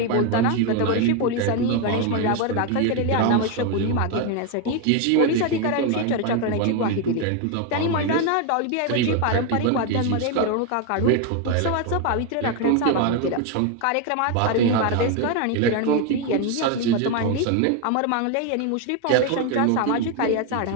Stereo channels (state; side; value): different; both; correlation 0.01